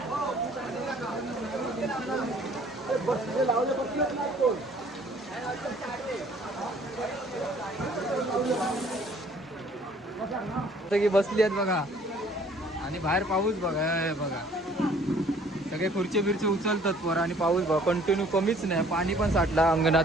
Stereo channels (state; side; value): normal; both; correlation 0.57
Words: की बसली आहेत बघा. आणि बाहेर पाऊस बघा बघा. सगळे खुर्ची बिरची उचलतात पोरं आणि पाऊस बघा कंटिन्यू कमीच नाही. पाणी पण साठला अंगणात